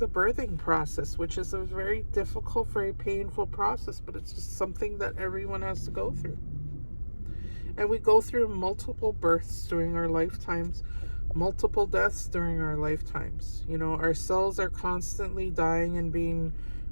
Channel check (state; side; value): inverted; both; correlation -1.00